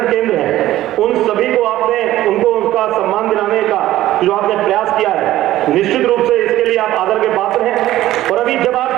केंद्र हैं उन सभी को आपने उनको उनका सम्मान दिलाने का जो आपने प्रयास किया है, निश्चित रूप से इसके लिए आप आदर के पात्र हैं। और अभी जब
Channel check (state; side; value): quieter; left; 14.6 dB